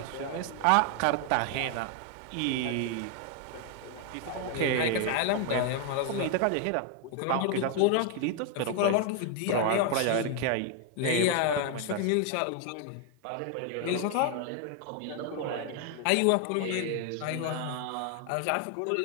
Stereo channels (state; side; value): different; both; correlation 0.01